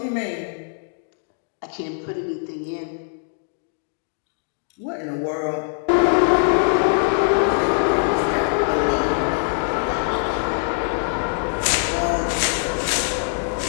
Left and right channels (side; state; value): right; silent; digital silence